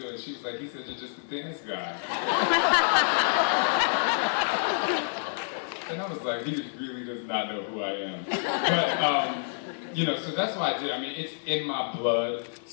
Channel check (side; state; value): right; silent; digital silence